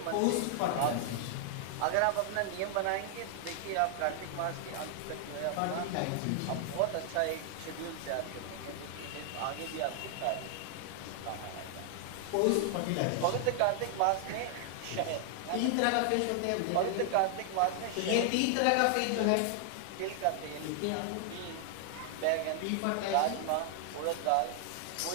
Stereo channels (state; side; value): different; both; correlation 0.00